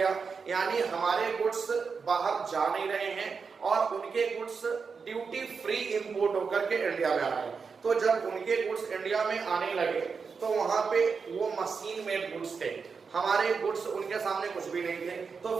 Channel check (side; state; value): left; quieter; 5.4 dB